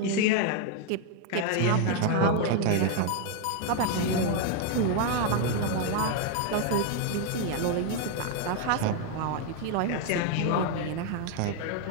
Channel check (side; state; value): both; different; correlation 0.01